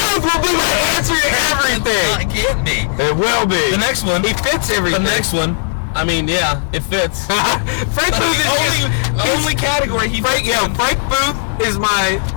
will be my answer to everything. No, it can't be. It will be. The next one. He fits everything. The next one. I mean, yeah, it fits. Frank That's Booth the is only category he fits in. Frank Booth is my.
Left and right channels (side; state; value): right; silent; digital silence